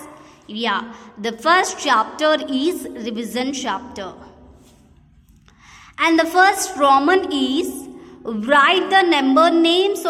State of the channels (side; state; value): both; identical; correlation 1.00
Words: Yeah, the first chapter is revision chapter. And the first Roman is write the number names